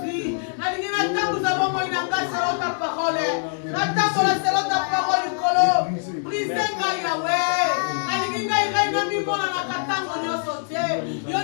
Nalingi na tangu za bongo inanga selo ta parole Na tango la selo ta parole kolo Brise nga Yahweh Nalingi nga iraina mimona na katango nyoso te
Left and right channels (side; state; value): right; silent; 63 dB below the other